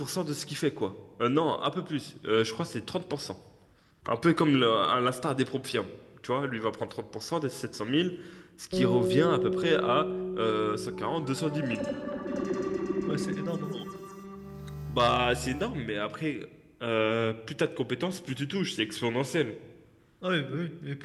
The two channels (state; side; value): identical; both; correlation 1.00